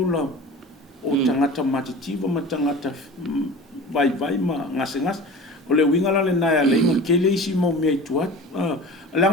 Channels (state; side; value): normal; both; correlation 0.37